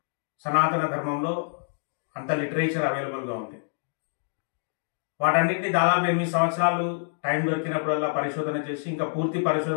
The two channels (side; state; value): right; silent; digital silence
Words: సనాతన ధర్మంలో అంత లిటరేచర్ అవైలబుల్గా ఉంది. వాటన్నిటిని దాదాపు 8 సంవత్సరాలు టైం దొరికినప్పుడల్లా పరిశోధన చేసి, ఇంకా పూర్తి